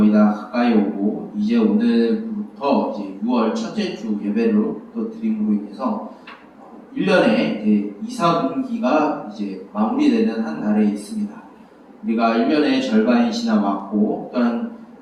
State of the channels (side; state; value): both; identical; correlation 1.00